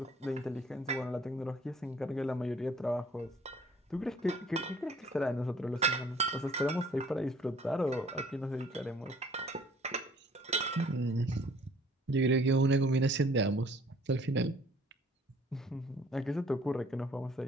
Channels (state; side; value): normal; both; correlation 0.56